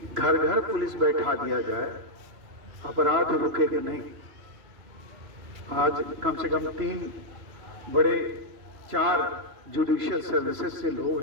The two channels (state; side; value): late; left; 3.0 ms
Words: घर घर पुलिस बैठा दिया जाए, अपराध रुकेगा नहीं। आज कम से कम 4 जुडिशियल सर्विसेज से लोग